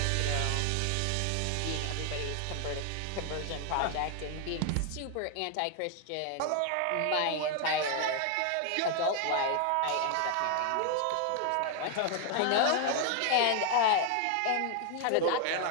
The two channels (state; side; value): different; both; correlation 0.00